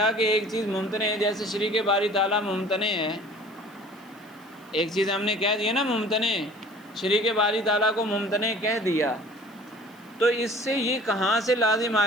کہ ایک چیز ممتنع ہے، جیسے شریک باری تعالیٰ ممتنع ہے، ایک چیز ہم نے کہہ دیا نا ممتنع، شریک باری تعالیٰ کو ممتنع کہہ دیا، تو اس سے یہ کہاں سے لازم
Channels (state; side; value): noise; right; hiss, 29 dB below the sound